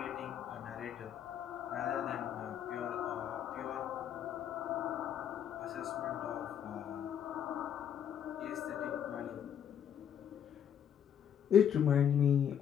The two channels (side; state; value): right; quieter; 9.0 dB